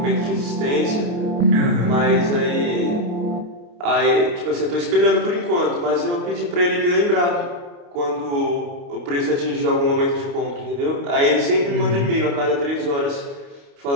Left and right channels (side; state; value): left; late; 29 ms